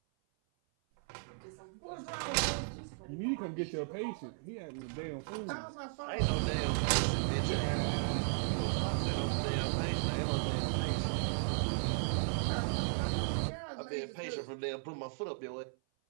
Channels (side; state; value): left; silent; 54 dB below the other